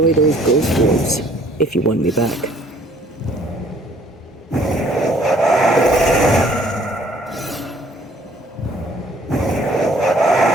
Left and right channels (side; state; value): both; normal; correlation 0.59